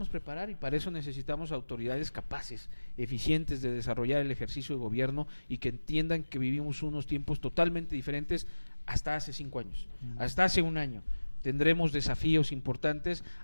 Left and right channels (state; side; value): inverted; both; correlation -1.00